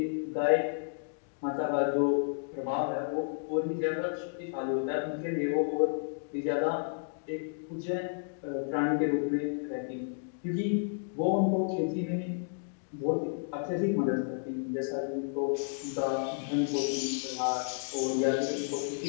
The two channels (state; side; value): silent; right; digital silence